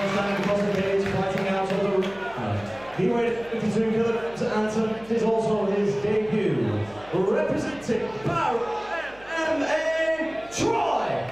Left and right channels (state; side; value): noise; right; hum, 24 dB below the sound